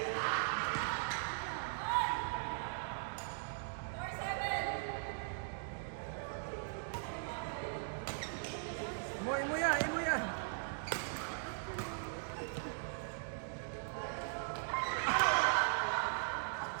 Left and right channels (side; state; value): left; silent; digital silence